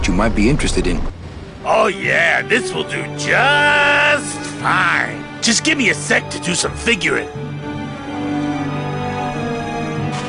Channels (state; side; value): identical; both; correlation 1.00